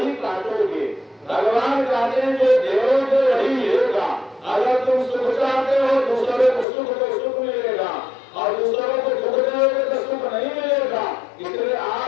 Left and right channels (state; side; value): drops out; right; at 6.7 s